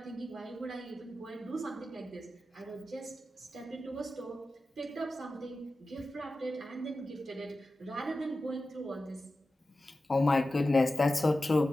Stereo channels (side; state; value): both; normal; correlation 0.93